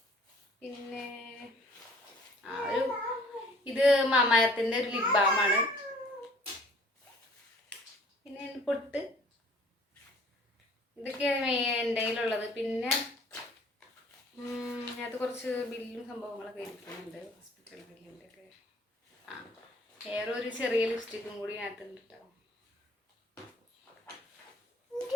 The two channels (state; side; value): normal; both; correlation 0.53